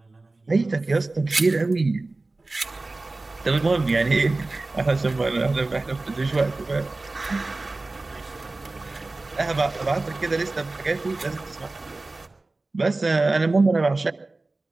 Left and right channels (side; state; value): left; quieter; 3.2 dB